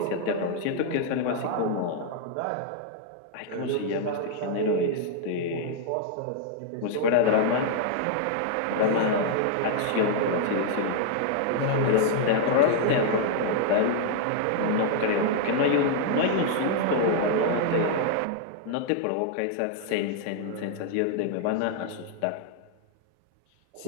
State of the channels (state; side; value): different; both; correlation -0.01